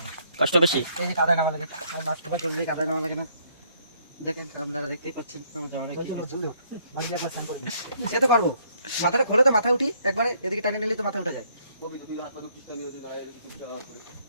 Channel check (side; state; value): both; inverted; correlation -0.67